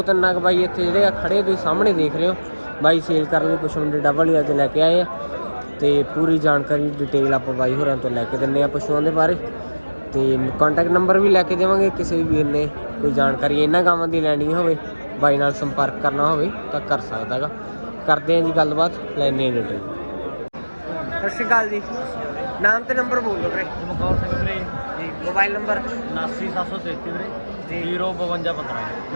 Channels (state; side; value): inverted; both; correlation -1.00